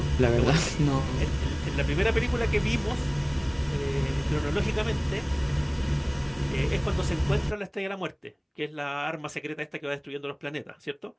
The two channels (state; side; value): identical; both; correlation 1.00